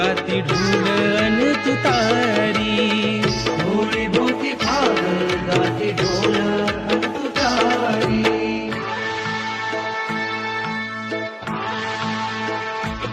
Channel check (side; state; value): both; identical; correlation 1.00